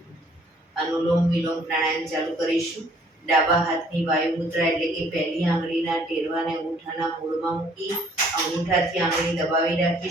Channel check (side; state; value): both; normal; correlation 0.60